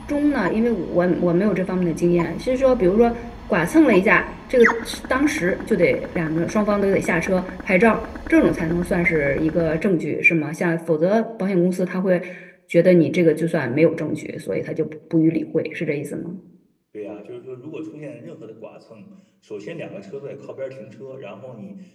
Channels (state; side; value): identical; both; correlation 1.00